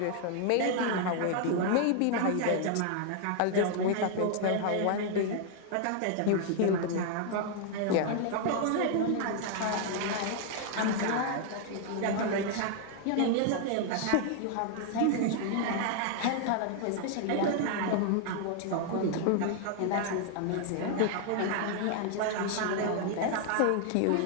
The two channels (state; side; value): different; both; correlation 0.00